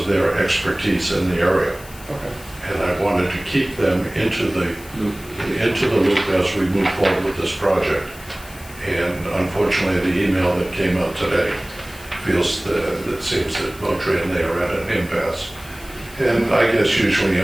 their expertise in the area. Okay. And I wanted to keep them into the loop as we move forward with this project. And unfortunately, the email that came out today feels that it seems that Moultrie and they are at an impasse. And I guess usually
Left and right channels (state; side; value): noise; left; hiss, 19 dB below the sound